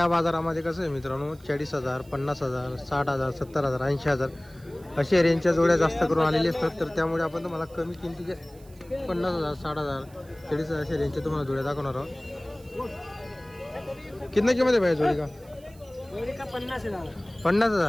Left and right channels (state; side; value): noise; right; hiss, 27 dB below the sound